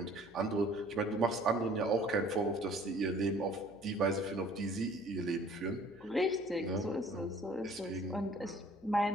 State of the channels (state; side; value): noise; left; hum, 25 dB below the sound